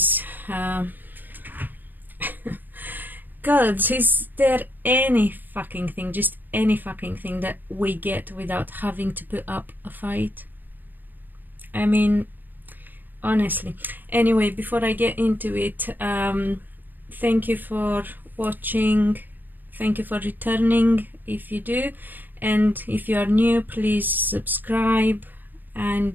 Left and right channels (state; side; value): late; left; 0.088 ms